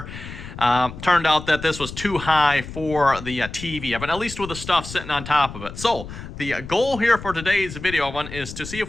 turned out that this was too high for the TV, but at least with the stuff sitting on top of it. So the goal here for today's video is to see if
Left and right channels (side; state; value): left; noise; rumble, 12 dB below the sound